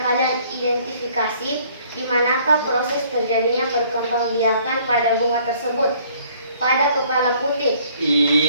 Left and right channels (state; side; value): inverted; both; correlation -0.59